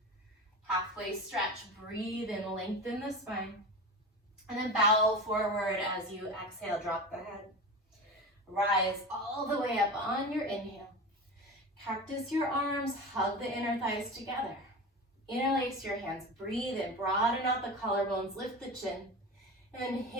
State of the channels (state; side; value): normal; both; correlation 0.29